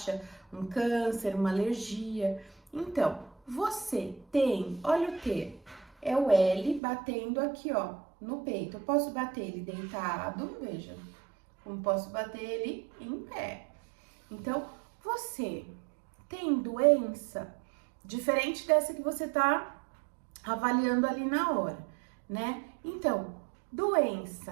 um câncer, uma alergia. Então, você tem, olha o T, é o L batendo aqui, ó, no peito. Eu posso bater ele deitado, veja, como posso bater ele em pé. Então, você tem doença diferente dessa que você tá avaliando ali na hora, né? Então,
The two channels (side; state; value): left; drops out; at 6.8 s